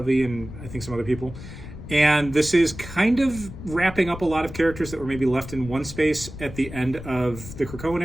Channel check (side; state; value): left; noise; rumble, 12 dB below the sound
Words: and I think some other people. And this is kind of wrapping up a lot of characters that were maybe left in one space at the end of the Krakoan